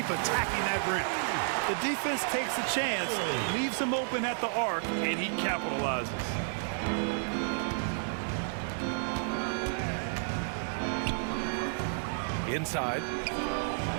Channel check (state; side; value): silent; left; digital silence